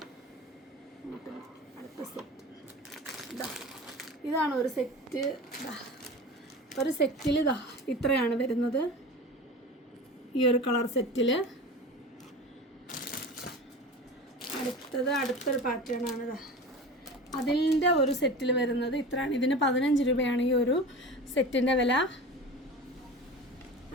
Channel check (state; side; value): normal; both; correlation 0.33